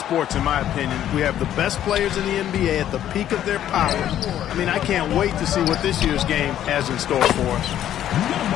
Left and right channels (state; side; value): quieter; right; 11.3 dB